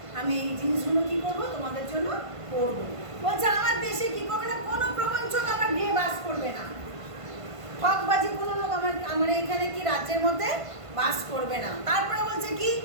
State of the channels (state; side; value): late; left; 1.5 ms